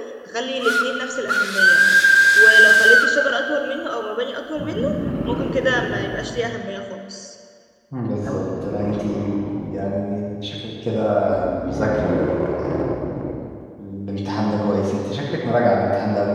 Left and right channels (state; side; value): identical; both; correlation 1.00